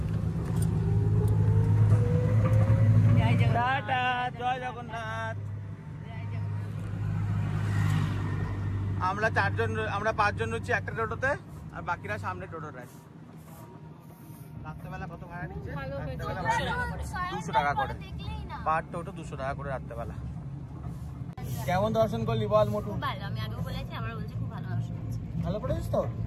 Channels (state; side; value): identical; both; correlation 1.00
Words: টাটা, জয় জগন্নাথ। আমরা 5জন রয়েছি একটা টোটোতে, আর বাকিরা সামনে টোটো রায়। রাত্রেবেলা কত ভাড়া নিচ্ছে? 200 টাকা করে পার টোটো, 200 টাকা করে রাত্রেবেলা। কেমন দর্শন করলি বল মোটু? ভালো, আমি আগেও বলেছি, আমরা বলছি খুব ভালো দর্শন হচ্ছে। ভালো পড়েছিস তো?